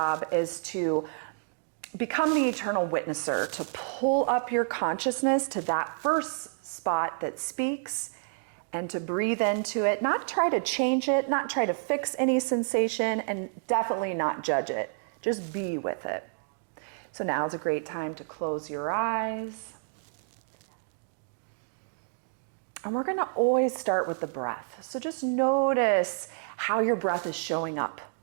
is to become the eternal witnesser, to pull up your consciousness to that first spot that speaks and to breathe into it, not try to change it, not try to fix any sensation, and definitely not judge it. Just be with it. So now is a great time to close your eyes. And we're going to always start with the breath. So just notice how your breath is showing up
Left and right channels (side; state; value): left; silent; digital silence